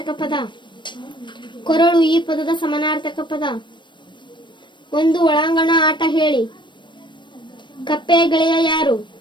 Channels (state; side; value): late; right; 0.22 ms